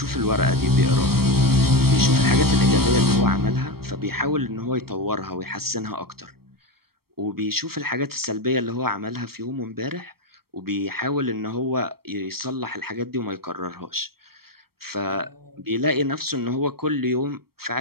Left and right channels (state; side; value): late; left; 0.94 ms